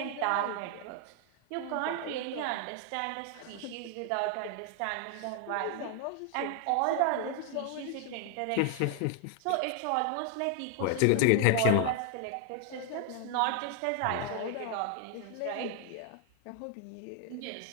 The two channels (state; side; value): different; both; correlation 0.00